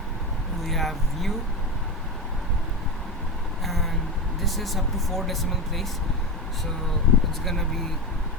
we have u, and this is up to 4 decimal place, so it's gonna be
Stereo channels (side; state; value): both; normal; correlation 0.19